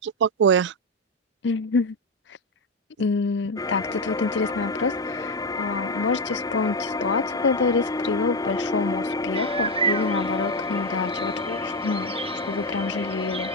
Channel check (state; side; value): normal; both; correlation 0.09